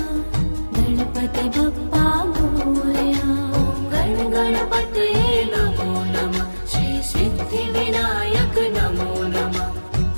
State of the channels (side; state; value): both; inverted; correlation -1.00